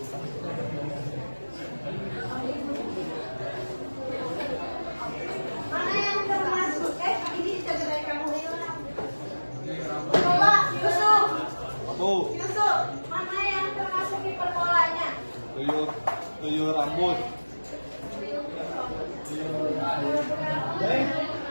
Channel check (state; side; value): inverted; both; correlation -1.00